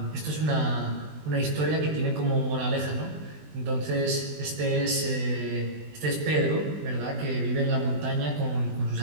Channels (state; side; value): late; left; 20 ms